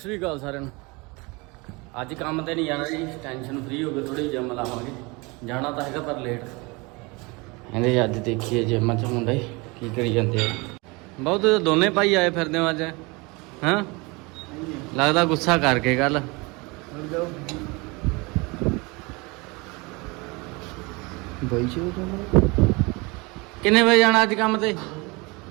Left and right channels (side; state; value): left; quieter; 26.5 dB